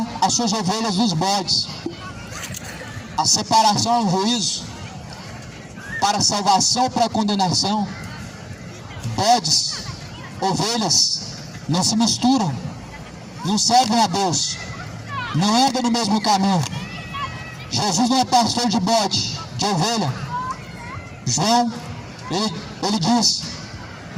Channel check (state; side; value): identical; both; correlation 1.00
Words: as suas ovelhas dos bodes. A separação é um juízo, para a salvação ou para a condenação. Bodes, ovelhas, não se misturam, não servem a Deus, não andam no mesmo caminho. Jesus não é pastor de bode, de ovelha. João, ele diz,